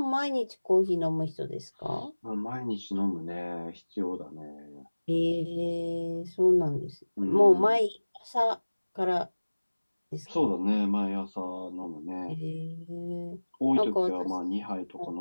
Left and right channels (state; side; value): inverted; both; correlation -1.00